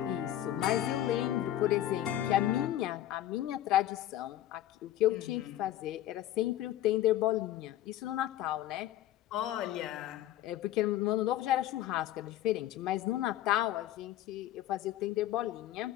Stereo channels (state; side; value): quieter; right; 13.3 dB